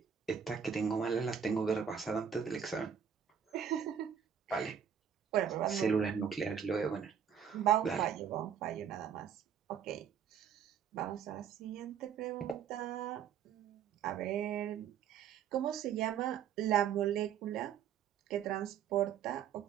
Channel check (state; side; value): quieter; left; 7.9 dB